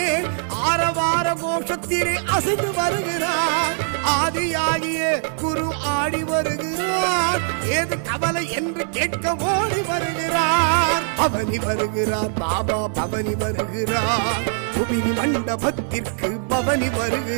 ஆரவார கோஷத்திலே அசைந்து வருகிறார். ஆதியாகிய குரு ஆடி வருகிறார். ஏது கவலை என்று கேட்க ஓடி வருகிறார். பவனி வருகிறார் பாபா, பவனி வருகிறார். புவினி மண்டபத்திற்கு பவனி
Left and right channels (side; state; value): left; silent; digital silence